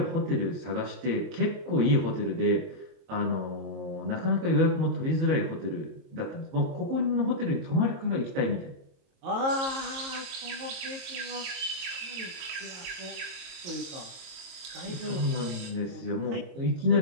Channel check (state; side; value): late; left; 23 ms